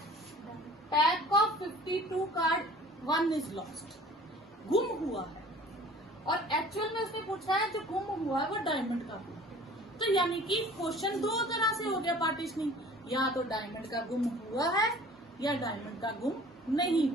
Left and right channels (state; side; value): normal; both; correlation 0.48